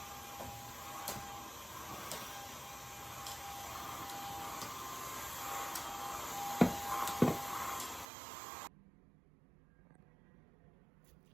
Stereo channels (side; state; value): left; drops out; at 8.1 s